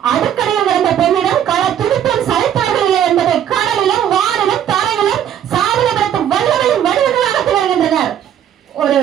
அடுக்கடையில் இருந்த பெண்ணிடம் கள துடிப்பும் சளைத்தார்கள் இல்லை என்பதை கடலிலும் வானிலும் தரையிலும் சாதனைப்படுத்த வல்லமையும் வடிவங்களாக திகழ்கின்றனர். ஒரு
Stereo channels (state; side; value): quieter; left; 10.0 dB